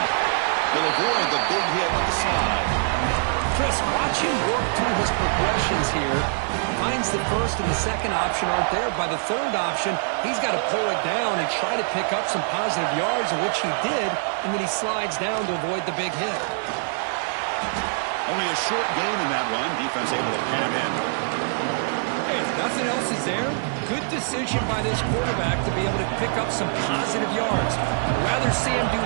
They'll avoid the big hit with the slide. Chris, watch him work through his progressions here. Finds the 1st and the 2nd option aren't there. By the 3rd option, he's got to pull it down and try to pick up some positive yards, which he did, and then he slides down to avoid the big hit. Only a short gain in that run. Defense able to pin him in. Hey, if nothing else is there, good decision by this quarterback to be able to pick up some positive yards. I'd rather see him do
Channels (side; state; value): left; silent; 63 dB below the other